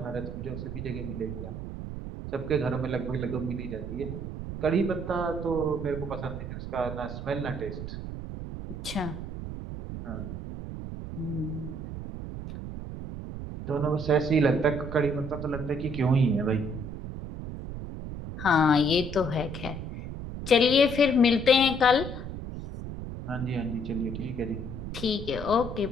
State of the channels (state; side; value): noise; right; rumble, 8 dB below the sound